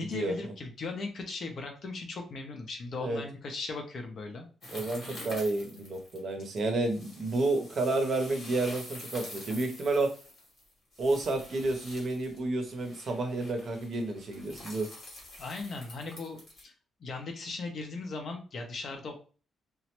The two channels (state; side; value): normal; both; correlation 0.78